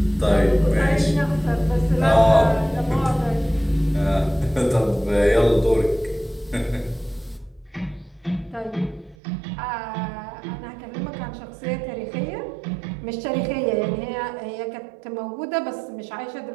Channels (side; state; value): left; drops out; at 9.2 s